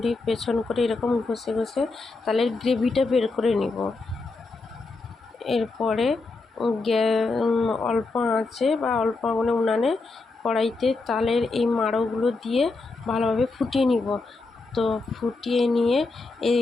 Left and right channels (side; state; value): right; quieter; 3.7 dB